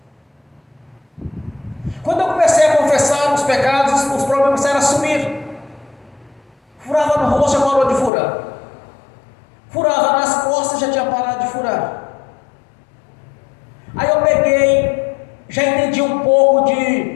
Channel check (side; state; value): right; drops out; at 8.1 s